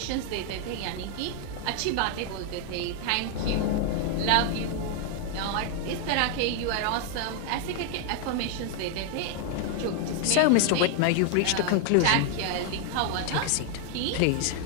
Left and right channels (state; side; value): different; both; correlation 0.00